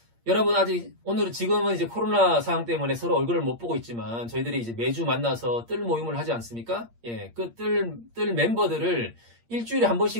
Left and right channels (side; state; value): left; late; 8.6 ms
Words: 여러분, 지금은 이제 코로나 상황 때문에 서로 얼굴을 못 보고 있지만, 저희들이 이제 매주 만나서 뜰 모임을 하지 않습니까? 예, 그 뜰 멤버들을 일주일에 한